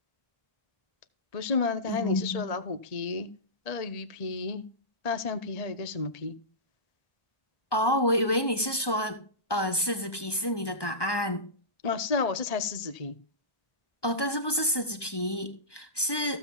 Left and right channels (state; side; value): late; right; 1.2 ms